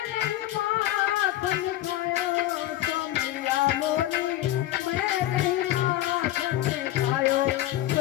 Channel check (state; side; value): quieter; right; 14.5 dB